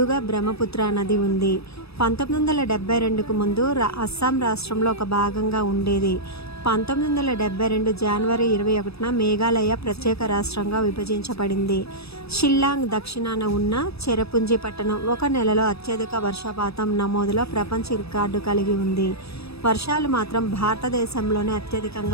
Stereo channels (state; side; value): late; right; 0.78 ms